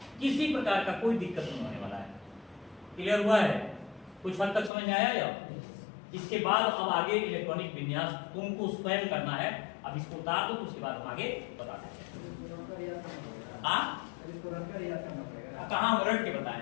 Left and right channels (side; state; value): right; drops out; at 4.7 s